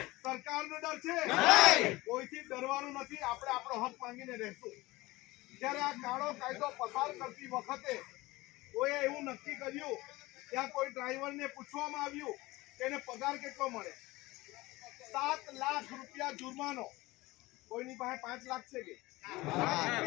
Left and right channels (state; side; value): quieter; right; 20.3 dB